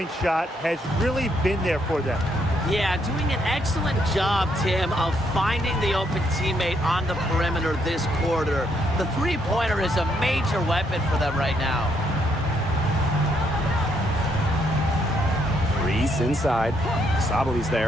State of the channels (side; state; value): both; normal; correlation 0.73